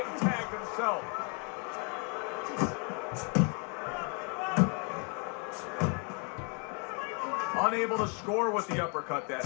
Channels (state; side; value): quieter; right; 36.8 dB